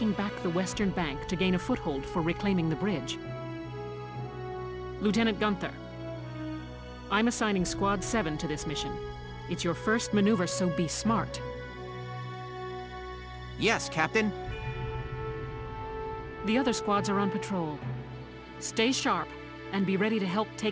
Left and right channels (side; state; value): both; identical; correlation 1.00